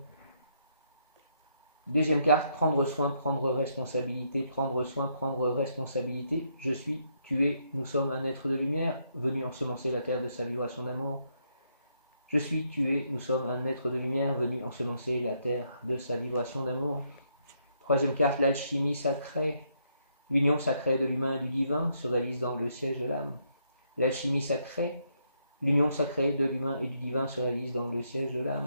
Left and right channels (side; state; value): both; inverted; correlation -0.75